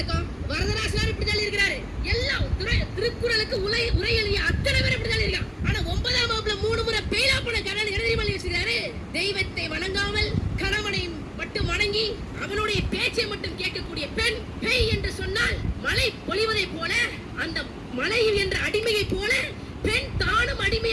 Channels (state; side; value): identical; both; correlation 1.00